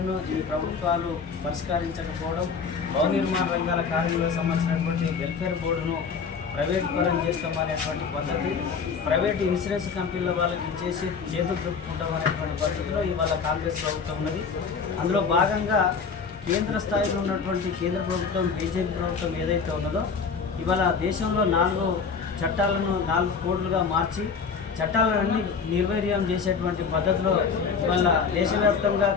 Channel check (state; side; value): quieter; right; 5.6 dB